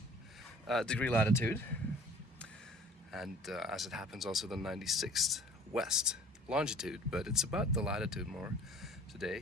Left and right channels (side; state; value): both; normal; correlation 0.49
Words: degree latitude, and as it happens also the 96th west longitude, but it's about the latitude more